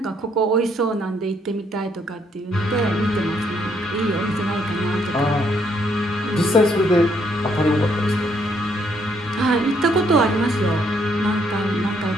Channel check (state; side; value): normal; both; correlation 0.71